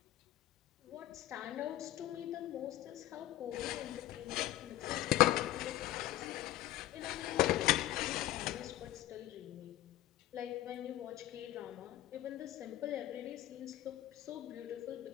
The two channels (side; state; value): right; quieter; 14.8 dB